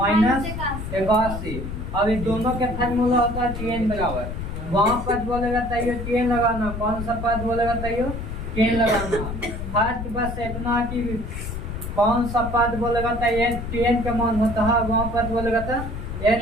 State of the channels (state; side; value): noise; left; rumble, 6 dB below the sound